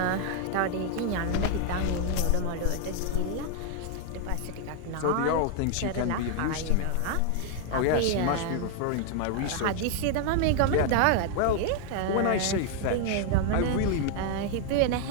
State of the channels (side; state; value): both; different; correlation 0.00